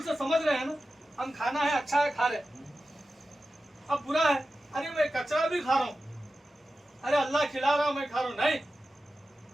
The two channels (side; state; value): both; normal; correlation 0.93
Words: سے سمجھ رہے ہیں نا، ہم کھانا ہے اچھا ہے کھا رہے، اب برا ہے، ارے میں کچرا بھی کھا رہا ہوں، ارے اللہ کھلا رہا میں کھا رہا ہوں، نہیں،